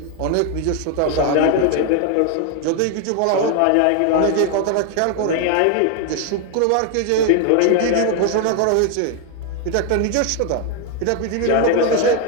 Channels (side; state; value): both; different; correlation 0.01